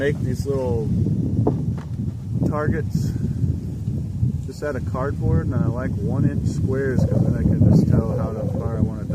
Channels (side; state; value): both; identical; correlation 1.00